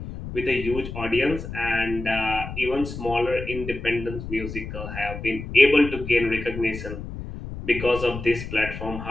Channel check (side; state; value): left; noise; rumble, 9 dB below the sound